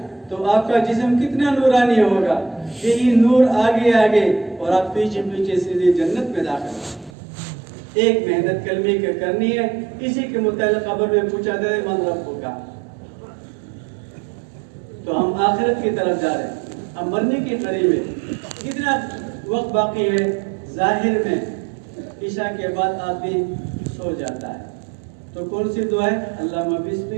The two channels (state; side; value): drops out; left; at 7.1 s